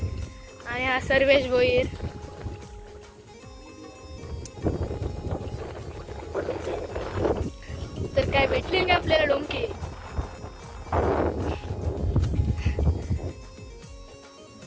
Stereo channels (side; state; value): both; identical; correlation 1.00